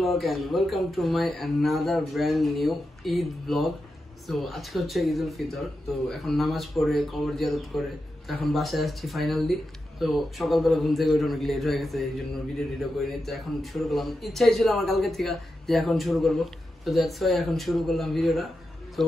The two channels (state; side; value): normal; both; correlation 0.89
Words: and welcome to my another brand new Eid vlog. So আজকে হচ্ছে ঈদুল ফিতর, তো এখন নামাজ পড়ে কবর জিয়ারত করে তো এখন বাসায় আসছি ফাইনালি। তো সকালবেলা ঘুম থেকে উঠে অনেক লেট হয়ে গেছে, এই জন্য ভিডিও করিনি। তো এখন শুরু করলাম, ইচ্ছাই ছিল আমার কালকে থেকে যে এখন শুরু করব, তো দ্যাটস ওয়াই এখন শুরু করলাম ভিডিওটা। তো